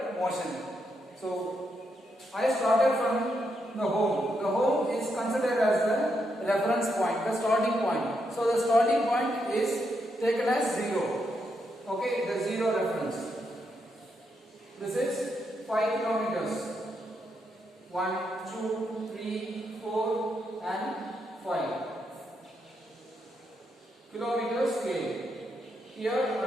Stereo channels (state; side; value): normal; both; correlation 0.81